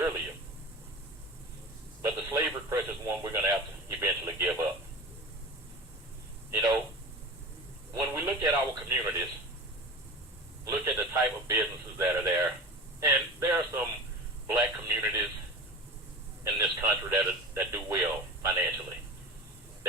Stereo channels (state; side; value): normal; both; correlation 0.33